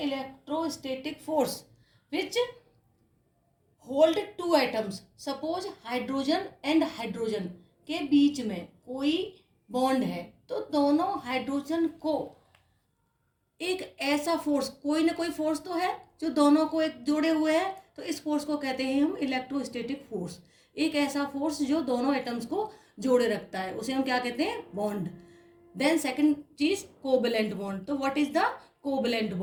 force which hold two atoms. Suppose hydrogen and hydrogen के बीच में कोई बॉन्ड है तो दोनों हाइड्रोजन को एक ऐसा फोर्स, कोई ना कोई फोर्स तो है जो दोनों को एक जोड़े हुए है, तो इस फोर्स को कहते हैं हम इलेक्ट्रोस्टैटिक फोर्स। एक ऐसा फोर्स जो दोनों एटम्स को जोड़े रखता है उसे हम क्या कहते हैं? बॉन्ड। देन सेकंड चीज कोवलेंट बॉन्ड। तो what is the covalent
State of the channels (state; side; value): identical; both; correlation 1.00